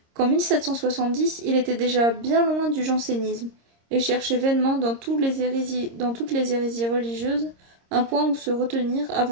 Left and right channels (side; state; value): left; late; 26 ms